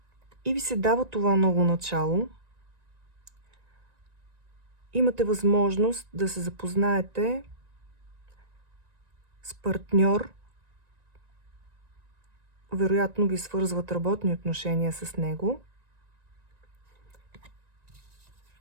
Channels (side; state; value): left; late; 1.9 ms